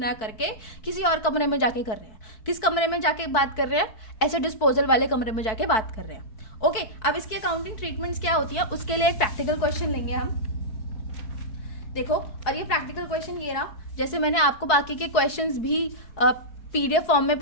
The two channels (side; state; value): right; late; 4.6 ms